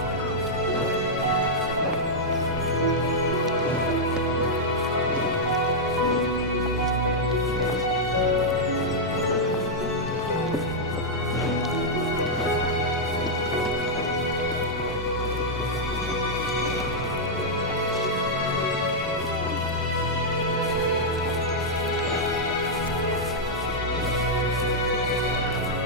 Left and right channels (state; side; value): normal; both; correlation -0.05